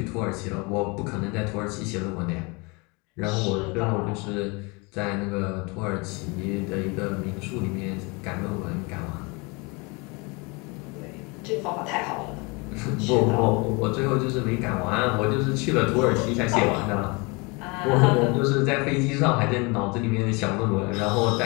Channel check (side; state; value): right; quieter; 28.5 dB